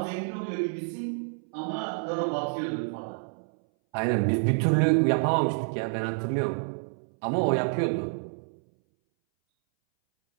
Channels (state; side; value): silent; left; 59 dB below the other